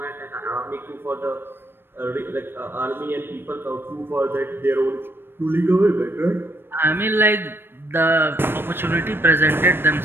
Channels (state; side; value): late; left; 0.10 ms